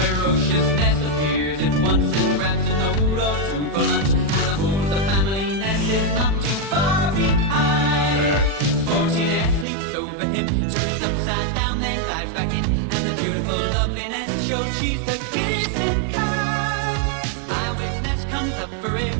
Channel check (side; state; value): left; drops out; at 9.7 s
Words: Ness appears at once and grabs a note or two for lunch. And of course the family Ness is not too far behind. Sporty Ness leaps over him, turns upside down and lies back in. And the beautiful loveliness shows she's the kissing kind. Eyewitness Ness comes up for it